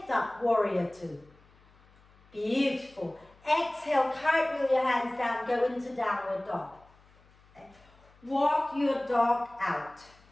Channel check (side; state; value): left; noise; hum, 29 dB below the sound